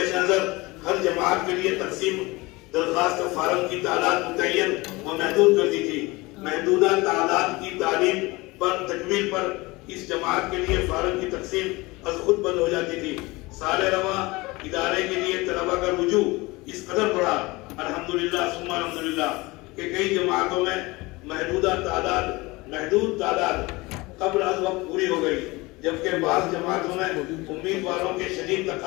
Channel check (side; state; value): right; quieter; 22.8 dB